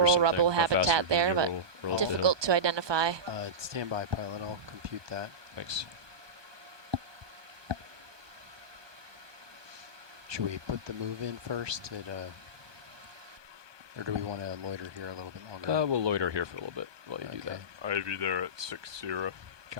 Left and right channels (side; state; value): left; late; 1.2 ms